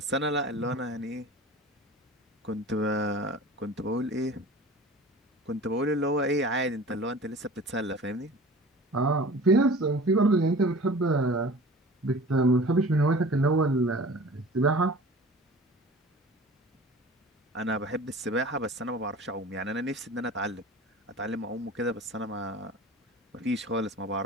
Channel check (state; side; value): normal; both; correlation 0.41